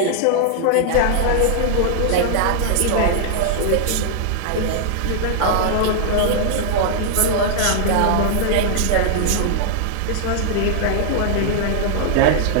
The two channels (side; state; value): both; different; correlation -0.01